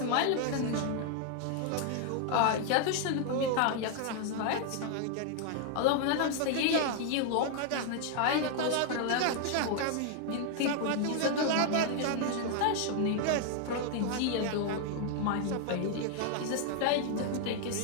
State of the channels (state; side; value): different; both; correlation 0.00